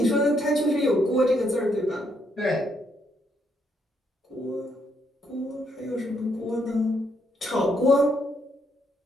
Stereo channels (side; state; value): both; normal; correlation 0.74